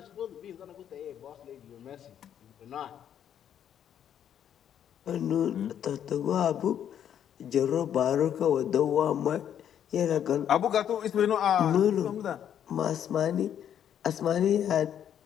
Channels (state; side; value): quieter; right; 9.6 dB